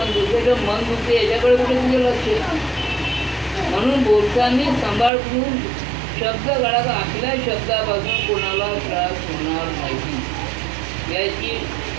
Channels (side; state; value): left; drops out; at 5.1 s